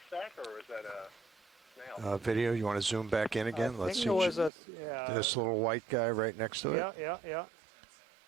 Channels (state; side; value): drops out; left; at 4.5 s